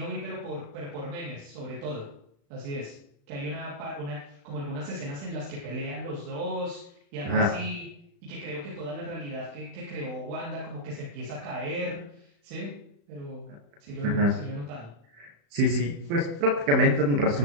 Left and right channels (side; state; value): left; late; 35 ms